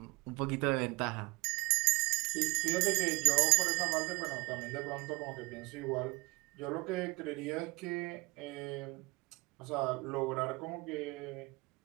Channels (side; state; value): left; quieter; 25.2 dB